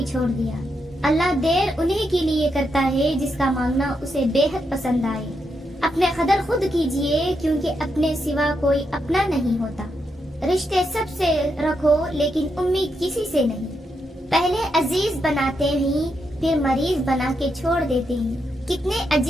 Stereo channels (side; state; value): both; normal; correlation 0.82